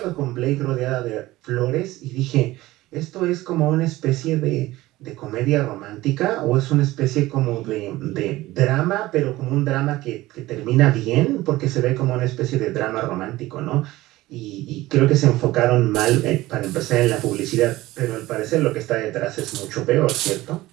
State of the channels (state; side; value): quieter; left; 17.7 dB